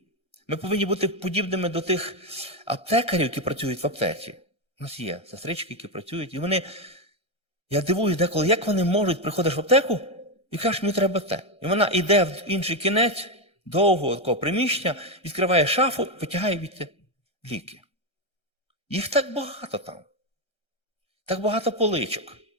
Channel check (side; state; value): right; late; 1.3 ms